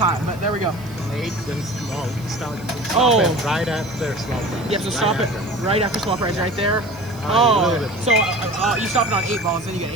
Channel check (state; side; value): noise; right; hiss, 23 dB below the sound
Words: but there we go. Late, then slow. Stop Oh. it right after slow. Yep, so stop it right after small prize right there. So you stop it on 8 balls, then you get